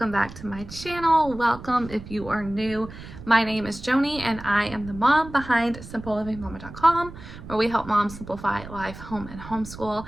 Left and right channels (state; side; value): noise; right; rumble, 14 dB below the sound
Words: back to my channel. Welcome if you are new. My name is Joni and I am the mom behind simplelivingmama.com, where we help moms simplify life, home, and homeschool.